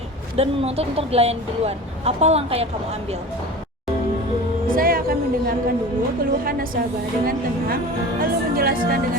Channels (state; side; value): normal; both; correlation 0.35